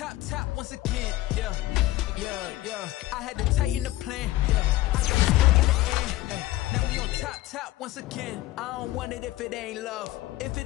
top once again. Yeah. I had to tighten the plan. Yeah. I got it right in the end. Now we on top once again. I don't want it if it ain't love. If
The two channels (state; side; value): quieter; right; 16.9 dB